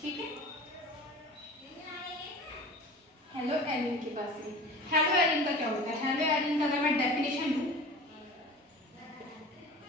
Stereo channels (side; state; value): both; normal; correlation 0.37